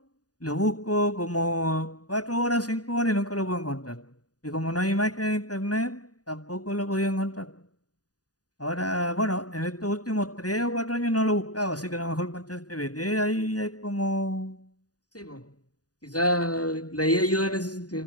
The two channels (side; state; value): right; late; 0.68 ms